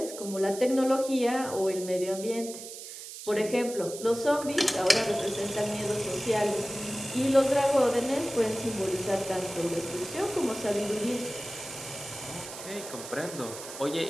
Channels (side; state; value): right; noise; hiss, 11 dB below the sound